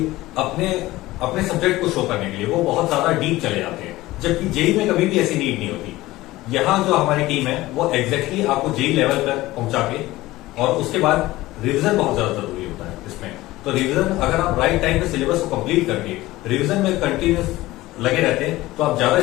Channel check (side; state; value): right; quieter; 17.9 dB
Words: अपने सब्जेक्ट को शो करने के लिए वो बहुत ज्यादा डीप चले जाते हैं, जबकि जेई में कभी भी ऐसी नीड नहीं होती। यहाँ जो हमारी टीम है वो एग्जैक्टली आपको जेई लेवल पर पहुंचा के, और उसके बाद रिवीजन बहुत ज्यादा जरूरी होता है इसमें। तो रिवीजन अगर आप राइट टाइम पे सिलेबस को कंप्लीट करके रिवीजन में कंटिन्यूस लगे रहते हैं तो आप ज्यादा